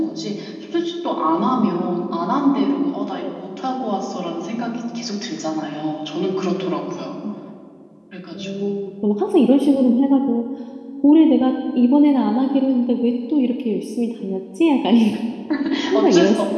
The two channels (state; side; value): identical; both; correlation 1.00